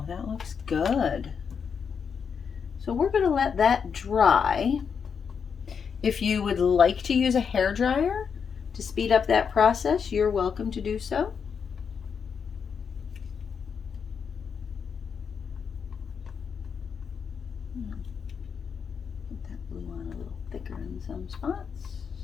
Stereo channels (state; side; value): quieter; right; 6.5 dB